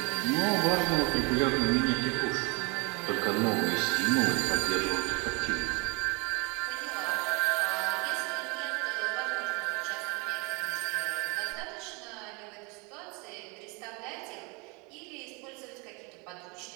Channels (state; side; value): quieter; left; 29.9 dB